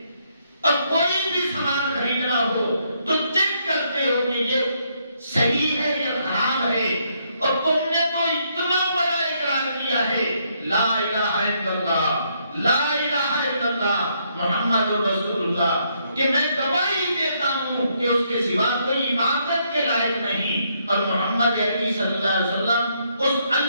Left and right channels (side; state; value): both; inverted; correlation -0.73